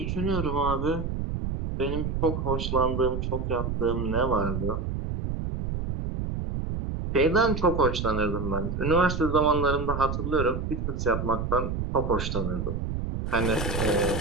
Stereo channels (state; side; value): noise; right; rumble, 3 dB below the sound